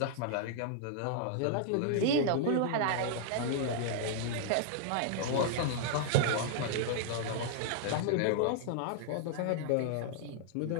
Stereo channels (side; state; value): both; different; correlation -0.01